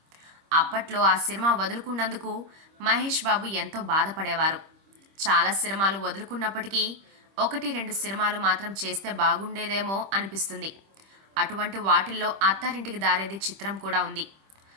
అప్పట్లో ఆ సినిమా వదులుకున్నందుకు మహేష్ బాబు ఎంతో బాధపడేవారు. చాలా సినిమాలు వదులుకున్నప్పటికీ 1-2 సినిమాలు మాత్రం చేస్తే బాగుండేదేమో అనిపిస్తుంది. అటువంటి వాటిల్లో అత్తారింటికి దారేది చిత్రం కూడా ఉంది.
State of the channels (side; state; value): left; late; 25 ms